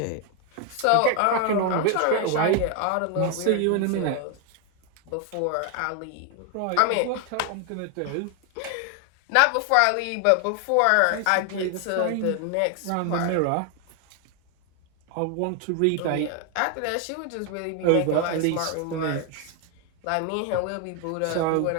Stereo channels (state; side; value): different; both; correlation 0.01